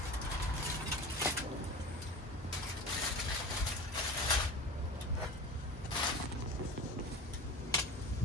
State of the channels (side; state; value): both; normal; correlation 0.34